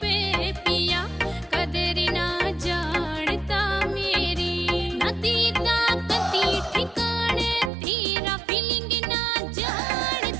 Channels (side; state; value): left; drops out; at 7.7 s